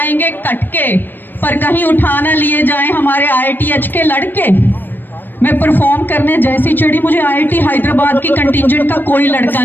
कटके, पर कहीं उठा ना लिए जाए हमारे IITH के लड़के। मैं परफॉर्म करने जैसी चढ़ी, मुझे IIT हैदराबाद की कंटिजेंट का कोई लड़का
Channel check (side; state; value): right; late; 0.093 ms